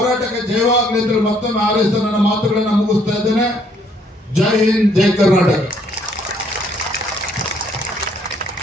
ಜಯವಾಗಲಿ ಅಂತೇಳಿ ಮತ್ತೊಮ್ಮೆ ಹಾರೈಸ್ತಾ ನನ್ನ ಮಾತುಗಳನ್ನು ಮುಗಿಸ್ತಾ ಇದ್ದೇನೆ. ಜೈ ಹಿಂದ್, ಜೈ ಕರ್ನಾಟಕ.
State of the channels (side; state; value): both; normal; correlation 0.66